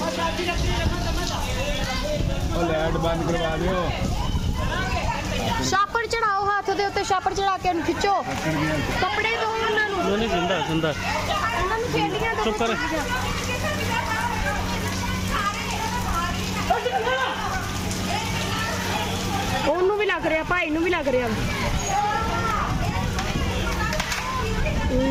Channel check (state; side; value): identical; both; correlation 1.00